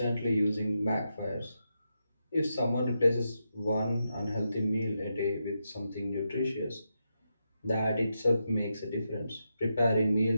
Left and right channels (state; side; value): inverted; both; correlation -0.85